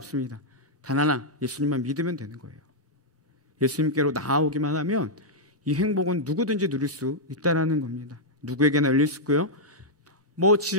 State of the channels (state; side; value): normal; both; correlation -0.07